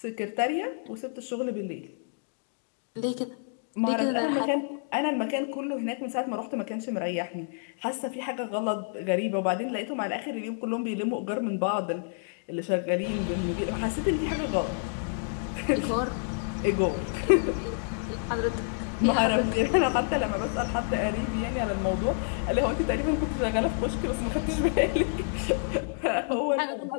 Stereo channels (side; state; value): right; silent; digital silence